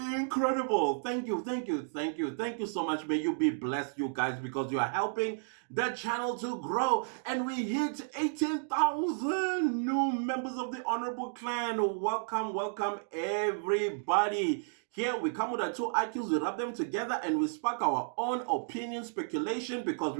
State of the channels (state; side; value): silent; left; digital silence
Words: Thank you, thank you, thank you, thank you so much. May you be blessed, you guys, because you are helping the channel to grow. And we hit 18,000 new members of the Honorable Clan. Welcome, welcome everybody. Here we come with our two IQs, we rub them together and we spark our own opinion, speculation, because